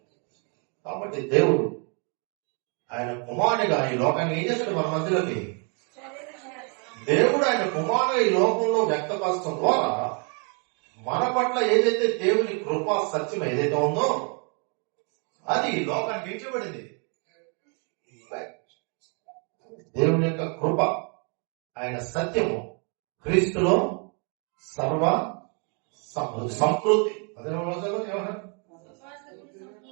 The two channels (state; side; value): quieter; left; 37.6 dB